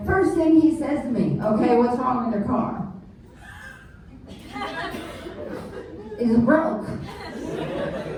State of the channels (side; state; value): both; identical; correlation 1.00